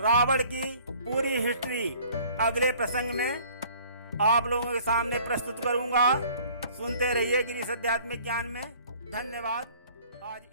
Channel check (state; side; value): inverted; both; correlation -0.53